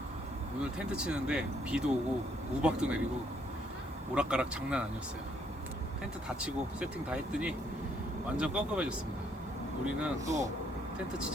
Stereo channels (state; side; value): normal; both; correlation 0.69